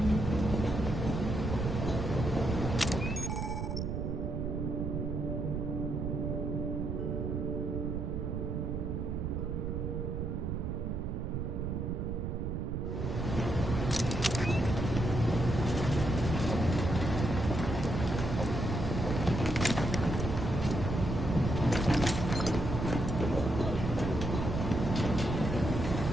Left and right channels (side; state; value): right; noise; rumble, 2 dB below the sound